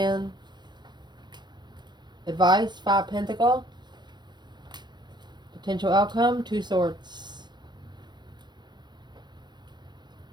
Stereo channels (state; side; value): late; left; 0.21 ms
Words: Advice, Five Pentacle. Potential outcome, Two Swords.